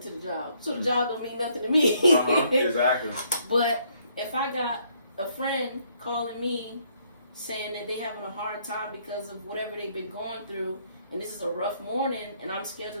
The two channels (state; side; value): inverted; both; correlation -0.68